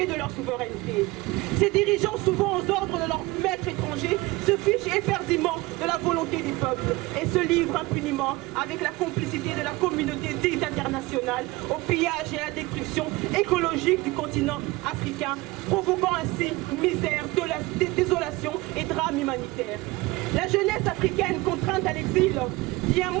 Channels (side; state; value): left; quieter; 21.4 dB